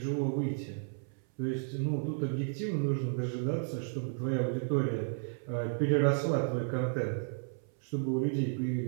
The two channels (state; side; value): silent; left; 56 dB below the other